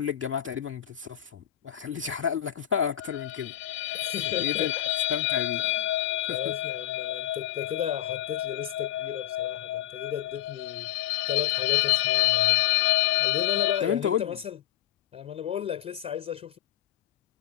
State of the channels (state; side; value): quieter; right; 12.7 dB